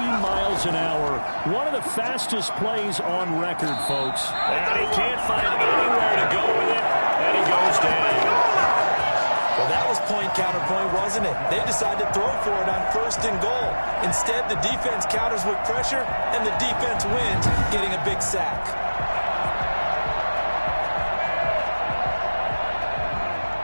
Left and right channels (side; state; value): both; inverted; correlation -1.00